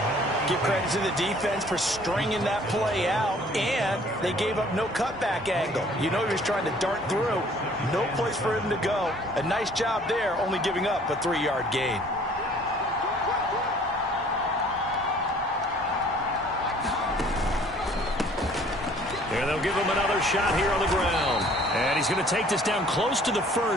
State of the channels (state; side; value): normal; both; correlation 0.55